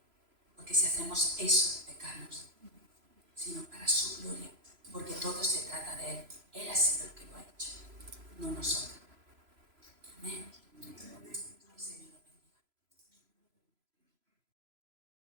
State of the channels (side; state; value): left; late; 3.0 ms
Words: porque si hacemos eso, pecamos, sino para su gloria, porque todo se trata de Él. Él ha sido el que lo ha hecho, no nosotros.